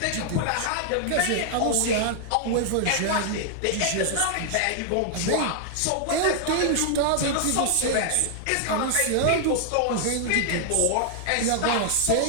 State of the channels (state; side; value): different; both; correlation -0.01